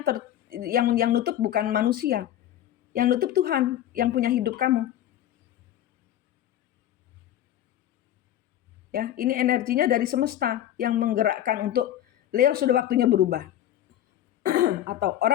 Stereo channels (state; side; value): quieter; right; 11.9 dB